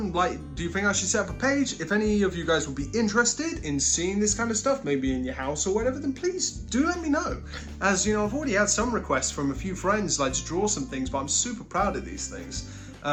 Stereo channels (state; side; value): identical; both; correlation 1.00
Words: like, do you think I should set up a page? If any of you guys would be interested in seeing this kind of stuff, maybe in your house or whatever, then please do let me know. As you know, I've already had some requests from a few friends, like to draw some things, but I'm super proud of these things.